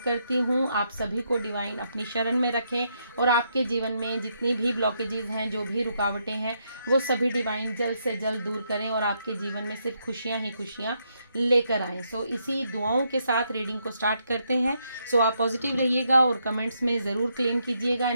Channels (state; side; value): inverted; both; correlation -0.77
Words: हूँ। आप सभी को डिवाइन अपनी शरण में रखें और आपके जीवन में जितनी भी ब्लॉकेजेस हैं, जो भी रुकावटें हैं, वो सभी डिवाइन जल्द से जल्द दूर करें और आपके जीवन में सिर्फ खुशियाँ ही खुशियाँ लेकर आएँ। सो इसी दुआओं के साथ रीडिंग को स्टार्ट करते हैं। सो आप पॉजिटिव रहिएगा और कमेंट्स में ज़रूर क्लेम कीजिएगा